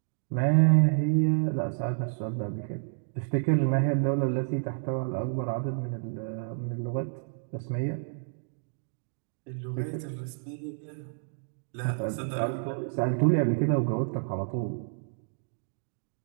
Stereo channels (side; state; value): left; silent; digital silence